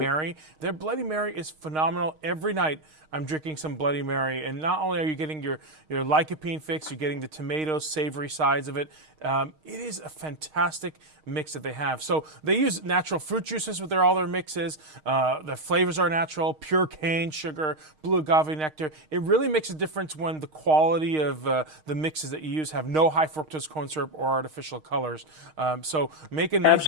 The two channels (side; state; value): left; late; 6.4 ms